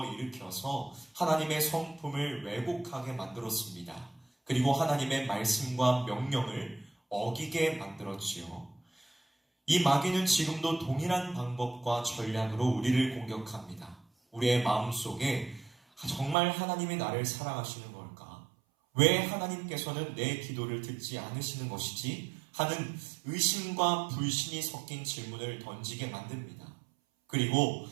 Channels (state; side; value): drops out; left; at 16.4 s